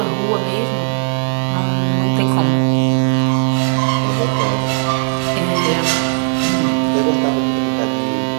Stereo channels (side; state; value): left; silent; 65 dB below the other